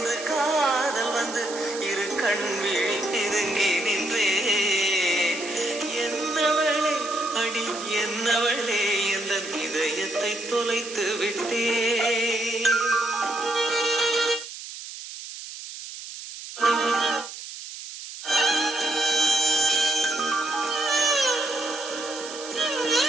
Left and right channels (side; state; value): right; noise; hiss, 11 dB below the sound